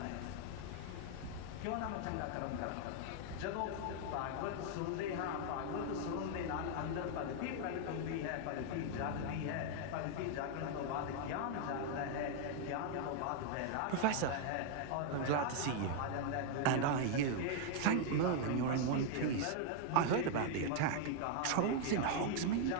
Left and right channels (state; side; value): different; both; correlation 0.00